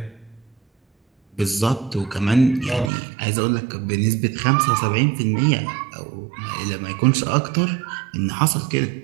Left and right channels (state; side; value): drops out; left; at 2.9 s